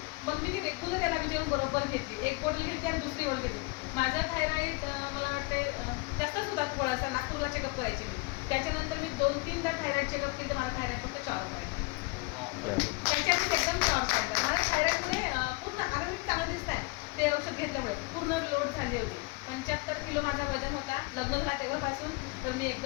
मग मी ती रेग्युलर याला विचारून बरोबर घेतली. एक बॉटल घेतली आणि दुसरी बॉटल घेतली. माझा थायरॉईड मला वाटते जास्तच होता थोडासा. नागपूरला चेकअप करायची मी. त्याच्यानंतर मी 2-3दा थायरॉईड चेकअप केलं तर मला थायरॉईड फक्त 4 पॉईंट. त्याच्यातच एकदम 4 पॉईंट. मला थायरॉईडमुळे पूर्ण आरोग्य चांगलं दिसत आहे. ते औषध घेतल्यामुळे पूर्ण लोड झाली होती. 75 किलो माझा वजन होता लग्न झाला तेव्हापासून. तर मी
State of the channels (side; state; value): right; quieter; 26.4 dB